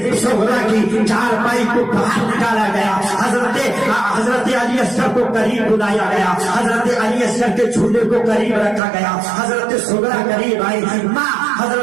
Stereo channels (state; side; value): drops out; left; at 8.8 s